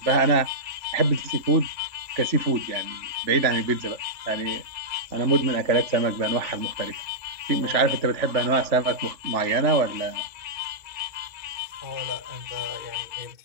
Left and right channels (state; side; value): late; left; 3.4 ms